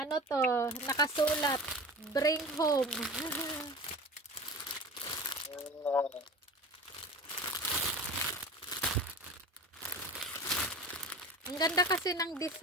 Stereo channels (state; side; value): normal; both; correlation 0.35